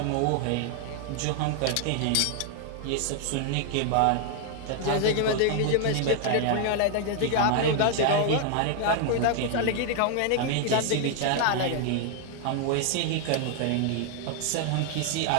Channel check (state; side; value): different; both; correlation 0.00